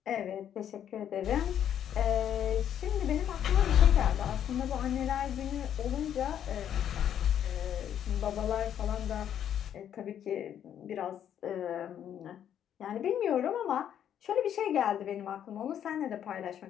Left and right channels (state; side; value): quieter; right; 9.7 dB